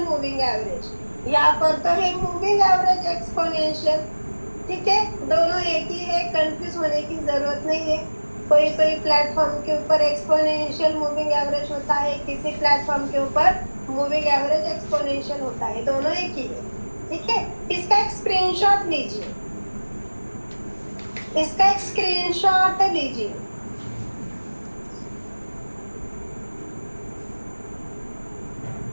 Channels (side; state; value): both; inverted; correlation -1.00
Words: मूविंग एवरेज, यहाँ पर तो है मूविंग एवरेज एक्सपोनेंशियल, ठीक है, दोनों एक ही है, कंफ्यूज होने की जरूरत नहीं है। कोई कोई प्लेटफॉर्म के ऊपर एक्सपोनेंशियल मूविंग एवरेज होता है, किसी प्लेटफॉर्म के ऊपर मूविंग एवरेज एक्सपोनेंशियल होता है, दोनों एक ही है, ठीक है। इसका एक स्क्रीनशॉट लीजिए, इसका एक स्क्रीनशॉट लीजिए।